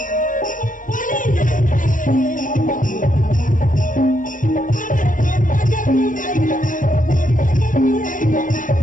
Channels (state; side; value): late; right; 0.38 ms